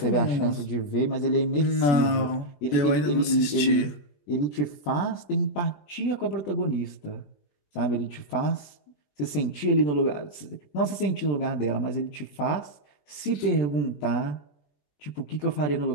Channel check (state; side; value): late; right; 21 ms